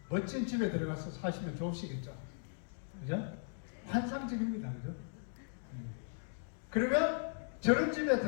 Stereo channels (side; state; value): right; silent; digital silence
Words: 멋진 집에 들어가서 사시면 좋으시겠죠. 그죠? 환상적입니다. 그죠? 그러면 저런 집에